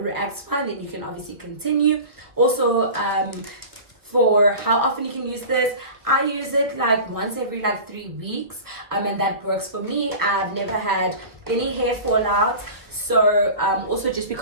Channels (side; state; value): left; late; 1.2 ms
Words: fine, then you can obviously continue. Also, for how often you can use this, I use it like once every like 3 weeks, and that works for me. I've never had any hair fallout, So also just be